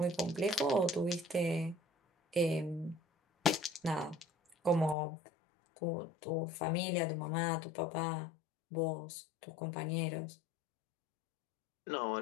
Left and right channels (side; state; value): right; drops out; at 5.0 s